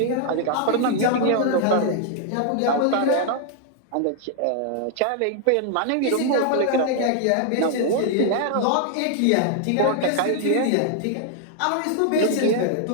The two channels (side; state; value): both; different; correlation 0.00